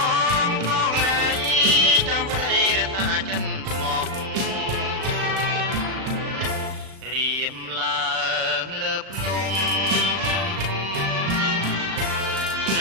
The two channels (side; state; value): left; late; 37 ms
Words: ងផងរៃចាំប្តីរសាចិនស្មោះរៀមឡើងលើភ្នំឆ្ង